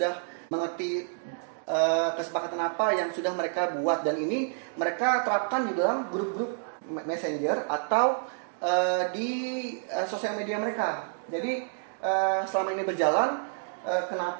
mengerti kesepakatan apa yang sudah mereka buat, dan ini mereka terapkan di dalam grup-grup messenger atau di sosial media mereka. Jadi selama ini berjalan,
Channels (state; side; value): silent; left; digital silence